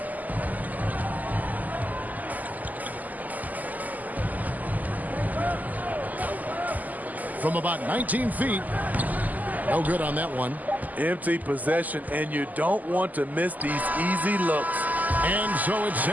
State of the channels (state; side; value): late; left; 0.081 ms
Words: From about 19 feet. No good on that one. Empty possession, and you don't want to miss these easy looks. And so it's